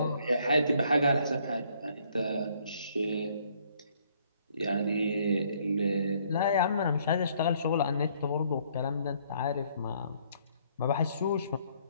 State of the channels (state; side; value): inverted; both; correlation -0.65